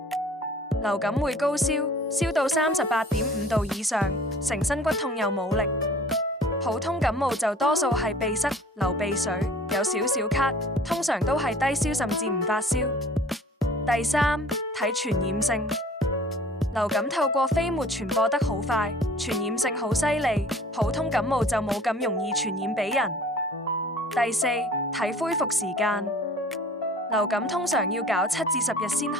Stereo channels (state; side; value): normal; both; correlation 0.48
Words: 流感會高燒，燒到38.5度以上，成身骨痛又冇力。普通感冒就多數係鼻塞、流鼻水，有少少咳，通常都係低燒甚至唔發燒。第三，睇傳染性。流感透過飛沫傳播得好快，傳染性好犀利，普通感冒就冇咁容易傳染俾人。第四，睇恢復時間。流感通常要搞7至10日先